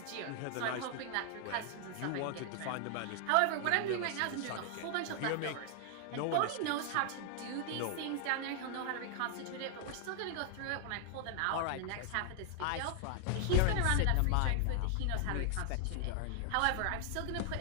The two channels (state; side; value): different; both; correlation 0.00